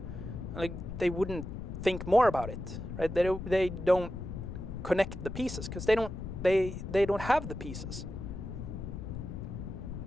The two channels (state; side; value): noise; left; rumble, 8 dB below the sound